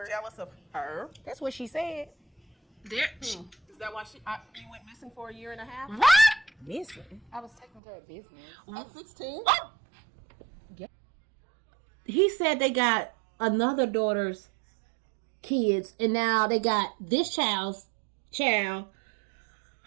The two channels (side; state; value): left; drops out; at 7.8 s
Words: Jealous of her. That's what she said. Is that why you went missing for a year and a half? Missing. I was taking care of business. At 16? He said they got another daughter's kids, and now they got this child's child.